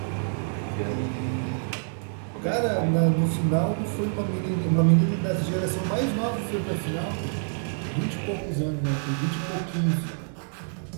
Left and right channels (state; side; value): silent; left; digital silence